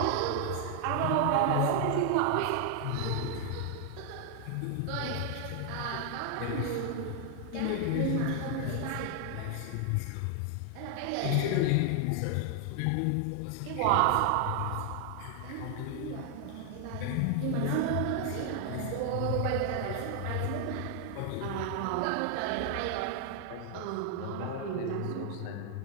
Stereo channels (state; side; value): different; both; correlation 0.00